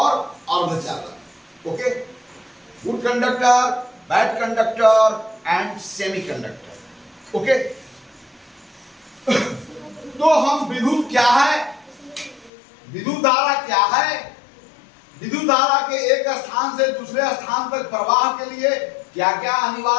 अर्धचालक। Okay, good conductor, bad conductor and semi conductor. Okay, तो हम विद्युत क्या है, विद्युत धारा क्या है, विद्युत धारा के एक स्थान से दूसरे स्थान तक प्रवाह के लिए क्या क्या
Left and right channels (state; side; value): drops out; right; at 12.5 s